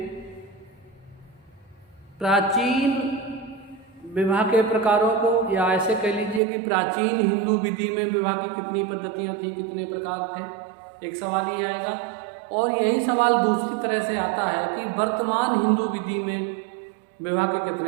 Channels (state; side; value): drops out; left; at 6.4 s